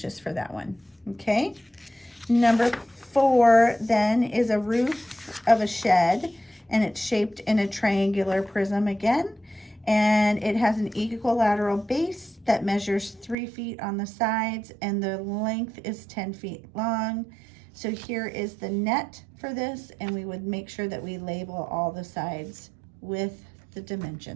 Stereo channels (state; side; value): drops out; left; at 13.4 s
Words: for that one. Okay. Number 4 then is a roof of a shed, and it's shaped in a triangular prism again, and it has an equilateral base that measures 3 feet on the sides, and the length is 10 feet long. So here is the net for this, and we would make sure that we label all the sides with the